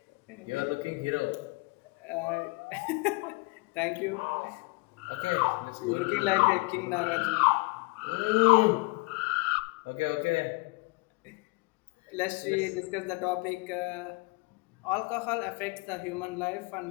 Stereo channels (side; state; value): right; quieter; 27.0 dB